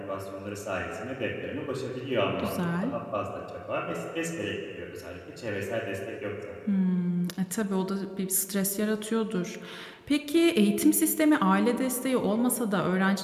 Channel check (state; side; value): identical; both; correlation 1.00